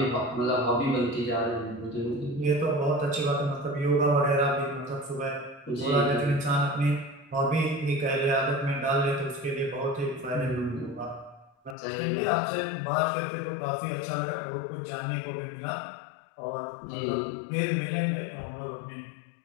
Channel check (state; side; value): drops out; right; at 11.8 s